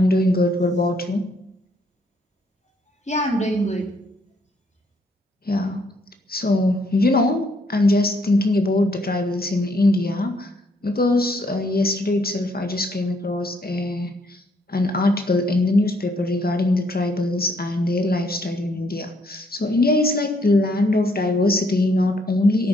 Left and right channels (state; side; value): normal; both; correlation 0.70